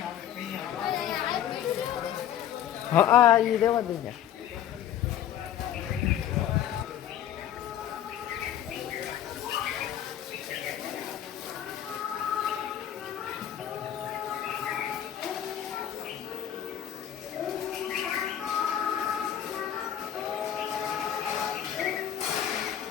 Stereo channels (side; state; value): right; quieter; 10.6 dB